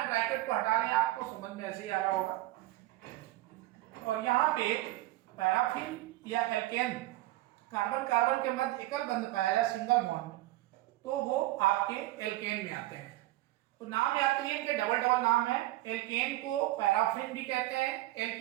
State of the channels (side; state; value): left; quieter; 17.3 dB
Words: ब्रैकेट को हटा लें, आपको समझ में ऐसे ही आ रहा होगा। और यहाँ पे पैराफिन या एल्केन, कार्बन कार्बन के मध्य एकल बंध पाया जाए सिंगल बॉन्ड, तो वो आपके एल्केन में आते हैं। तो नाम याद करिए, इनके डबल डबल नाम है। एल्केन को पैराफिन भी कहते हैं,